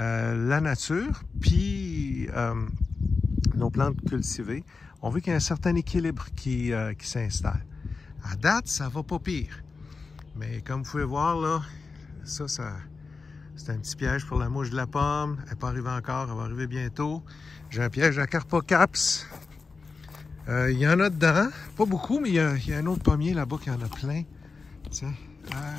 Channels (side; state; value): right; quieter; 4.4 dB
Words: nature puis nos plantes cultivées. On veut qu'il y ait un certain équilibre qui s'installe. À date, ça va pas pire. Mais comme vous pouvez voir, là, ça c'est un petit piège pour la mouche de la pomme. Elle n'est pas arrivée encore, elle va arriver bientôt. J'ai un piège à Carpocaps. Il y en a dedans, pas beaucoup, mais il y a un autre pommier là-bas qui en a plein. Tiens,